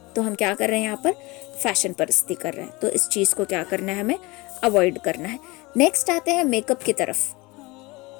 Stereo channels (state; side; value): quieter; right; 23.5 dB